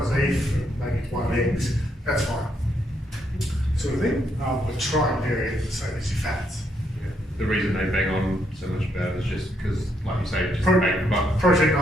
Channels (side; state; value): both; normal; correlation 0.75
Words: beef and maybe one of eggs, that's fine. sort of thing, but try and vary it the same as your fats. Yeah. The reason they bang on so much about it is just because, like you say, just Protein